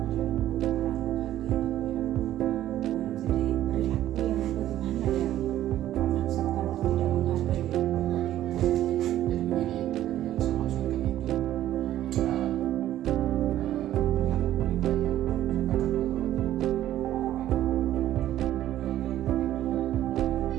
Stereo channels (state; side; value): quieter; left; 12.9 dB